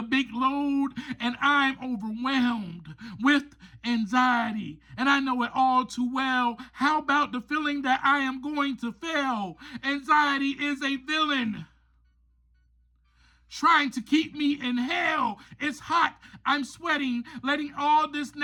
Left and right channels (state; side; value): identical; both; correlation 1.00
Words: big load, and I'm overwhelmed with anxiety. And I know it all too well. How about the feeling that I am going to fail? Anxiety is a villain, trying to keep me in hell. It's hot, I'm sweating, letting all this